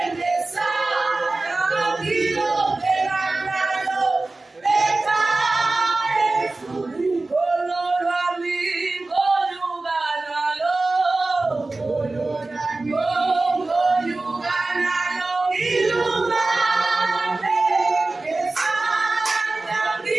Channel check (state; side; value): quieter; left; 3.2 dB